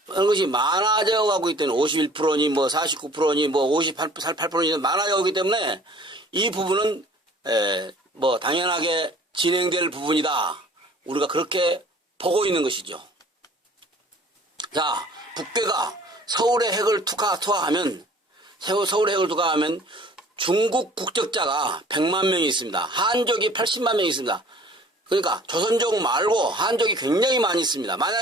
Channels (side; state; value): both; normal; correlation 0.51